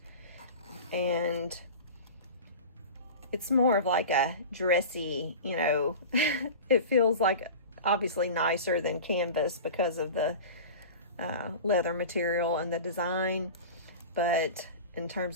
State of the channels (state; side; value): inverted; both; correlation -0.33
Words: And it's more of like a dressy, you know, it feels like obviously nicer than canvas because of the leather material and the design. But in